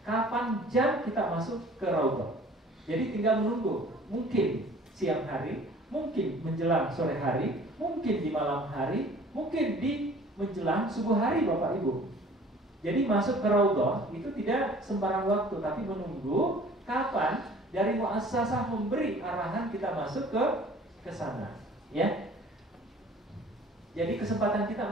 kapan jam kita masuk ke Raudhah. Jadi tinggal menunggu, mungkin siang hari, mungkin menjelang sore hari, mungkin di malam hari, mungkin di menjelang subuh hari Bapak Ibu. Jadi masuk ke Raudhah itu tidak sembarang waktu, tapi menunggu kapan dari muassasah memberi arahan kita masuk ke sana, ya. Jadi kesempatan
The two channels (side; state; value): both; normal; correlation 0.50